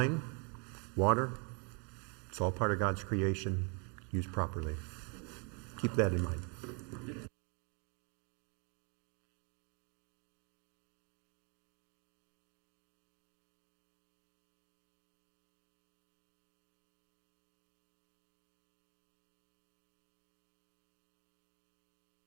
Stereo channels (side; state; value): left; quieter; 35.1 dB